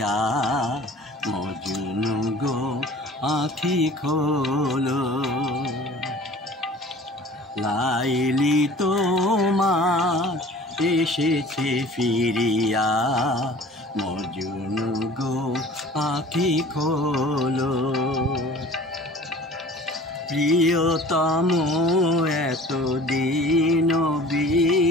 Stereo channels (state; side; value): normal; both; correlation 0.45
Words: মজনু গো আঁখি খোলো। লাইলি তোমার এসেছে ফিরিয়া, মজনু গো আঁখি খোলো। প্রিয়তম এতদিন